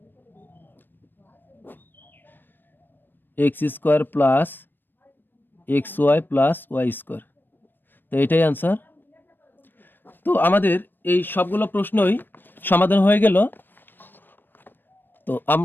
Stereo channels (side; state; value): right; late; 0.094 ms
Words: x square plus x Y plus Y square. তো এটাই অ্যান্সার। তো আমাদের এই সবগুলো প্রশ্নই সমাধান হয়ে গেল। তো